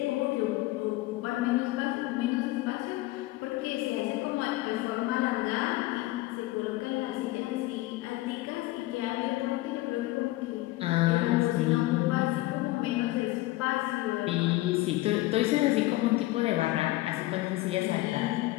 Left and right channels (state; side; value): quieter; right; 18.7 dB